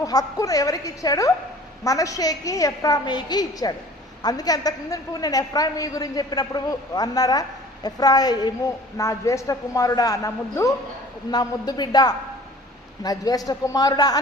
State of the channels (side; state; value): both; normal; correlation 0.47